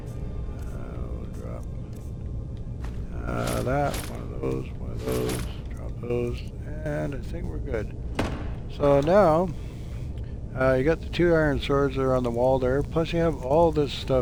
drop that, one of those, drop those, and I think we're good. So now, you got the 2 iron swords that are on the wall there, plus you have all this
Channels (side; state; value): both; identical; correlation 1.00